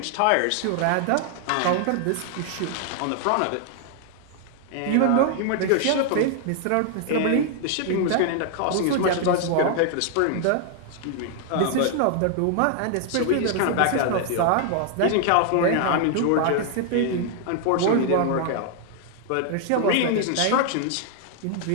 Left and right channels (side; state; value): both; different; correlation 0.00